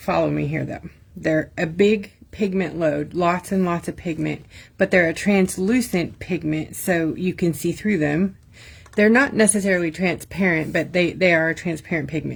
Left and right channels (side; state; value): both; identical; correlation 1.00